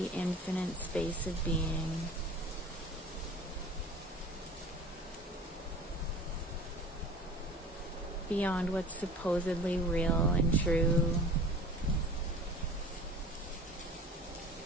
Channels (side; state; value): both; normal; correlation 0.42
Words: infinite space of being. Beyond what's supposedly real and true.